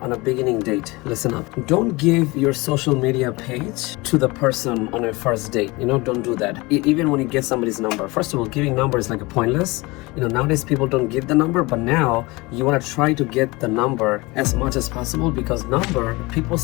on a beginning date. Listen up. Don't give your social media page to the person on your first date. Don't do that. Even when you get somebody's number. First of all, giving number is like a pointless. Nowadays people don't give the number, but now you want to try to get the number as much as possible, because people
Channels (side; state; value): right; quieter; 23.6 dB